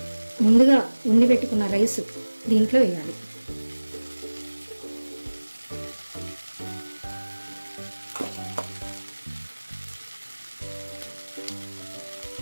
ముందుగా ఉండి పెట్టుకున్న రైస్ దీంట్లో వేయాలి.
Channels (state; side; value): inverted; both; correlation -1.00